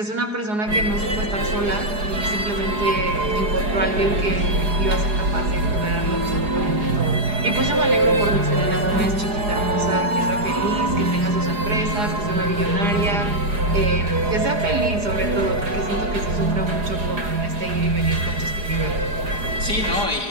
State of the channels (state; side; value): late; left; 4.8 ms